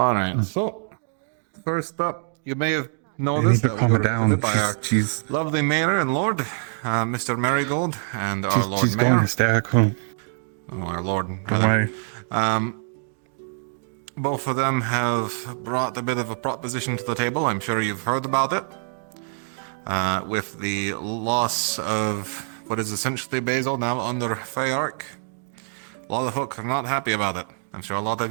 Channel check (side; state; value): left; silent; 60 dB below the other